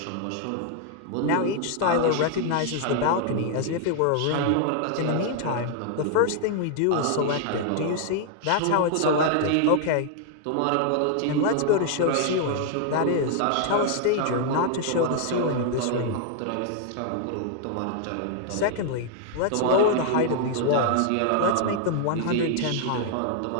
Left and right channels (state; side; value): different; both; correlation 0.00